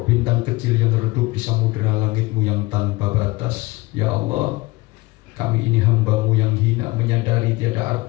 bintang kecil yang redup di samudera langitmu yang tanpa batas. Ya Allah, kami ini hambamu yang hina, menyadari tiada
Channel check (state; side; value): quieter; right; 22.0 dB